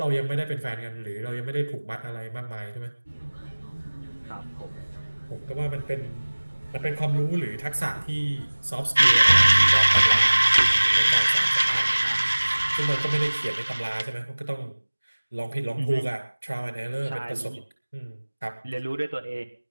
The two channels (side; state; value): both; inverted; correlation -1.00